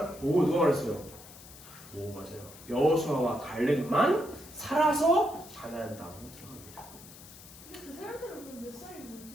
누가 말했어요? 맞아요. 여호수아와 갈렙만 살아서 가나안 땅으로 들어갑니다. 그 사람들은 그럼 몇 살인지?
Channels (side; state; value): left; noise; hiss, 18 dB below the sound